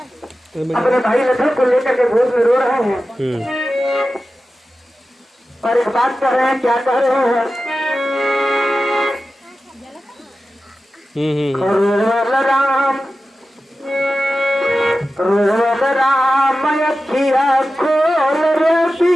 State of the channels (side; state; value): both; normal; correlation 0.93